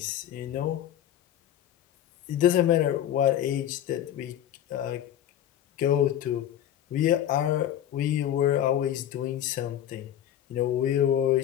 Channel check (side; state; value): right; quieter; 11.0 dB